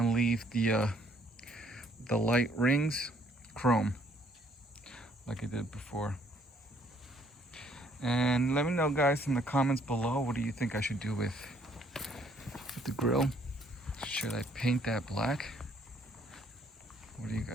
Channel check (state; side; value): normal; both; correlation 0.65